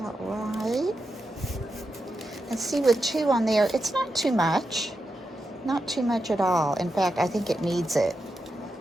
right. And see, with 2 on there, it's not too much. Not too much at all. In fact, I think it needs it.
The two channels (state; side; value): normal; both; correlation 0.88